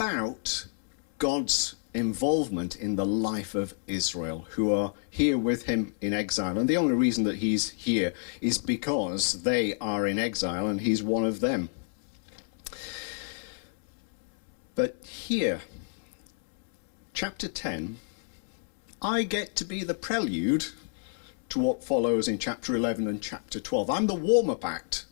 God's involvement in the life of Israel, who are here with him in exile. And the only reason that he's here is because they are in exile and he's one of them. But here, chapter 10, I get to be the prelude to what follows in chapter 11 and chapter 12. I'm the warm-up act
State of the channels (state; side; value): silent; right; 59 dB below the other